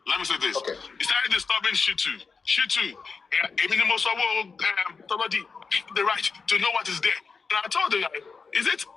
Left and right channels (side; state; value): right; quieter; 4.9 dB